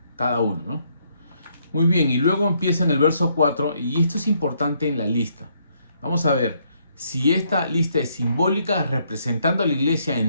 cada uno, ¿no? Muy bien, y luego empieza en el verso 4, y esto es importante en la lista. Vamos a ver si esta lista es simbólica, representando a la iglesia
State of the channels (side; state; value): both; inverted; correlation -0.71